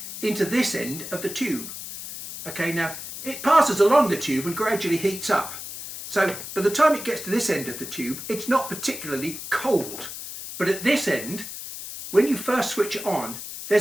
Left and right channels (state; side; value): noise; left; hiss, 10 dB below the sound